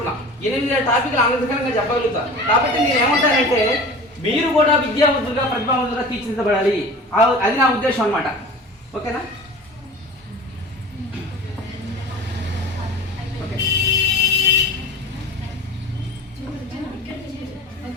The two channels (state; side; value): normal; both; correlation 0.37